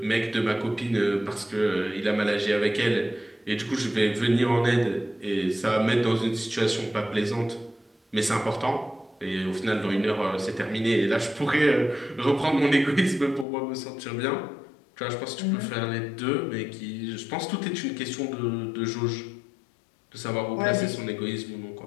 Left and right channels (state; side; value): drops out; right; at 13.5 s